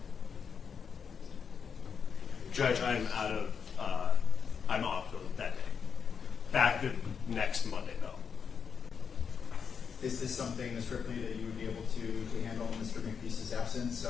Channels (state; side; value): quieter; right; 6.5 dB